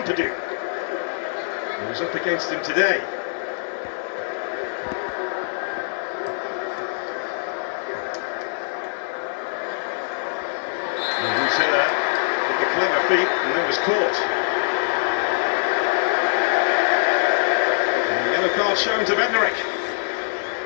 who was up against him today. Clever feet, and then was caught. And the yellow card shown to Bednarek.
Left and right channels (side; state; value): right; silent; digital silence